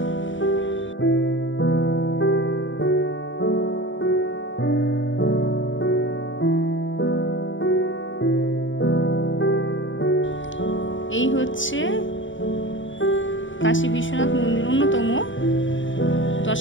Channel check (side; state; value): right; late; 0.56 ms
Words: এই হচ্ছে কাশী বিশ্বনাথ মন্দির অন্যতম